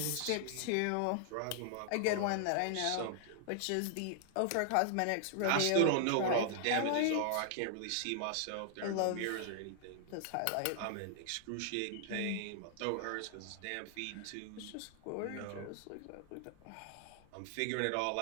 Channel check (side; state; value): both; different; correlation -0.01